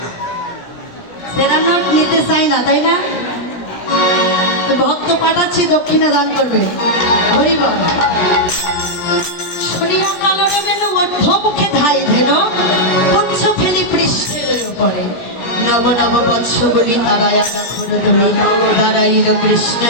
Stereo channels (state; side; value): late; right; 16 ms